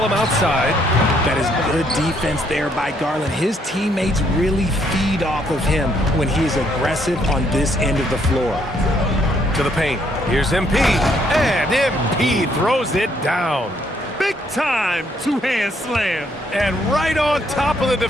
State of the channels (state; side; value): normal; both; correlation 0.70